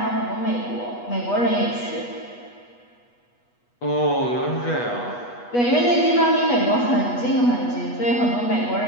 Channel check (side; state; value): right; late; 8.2 ms